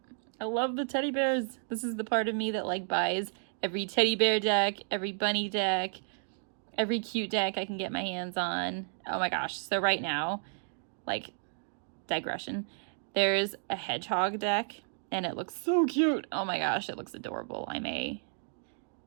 I love the teddy bears. This is the part of me that like buys every teddy bear deck, every bunny deck, every cute deck I can get my hands on. Oh my gosh. So right now, like, digression, there's a hedgehog deck and it looks so cute. Oh my gosh, it looks adorable. I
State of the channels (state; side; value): silent; left; digital silence